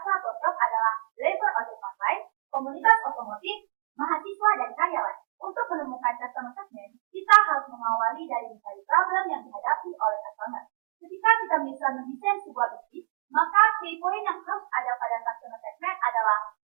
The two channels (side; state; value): left; silent; 60 dB below the other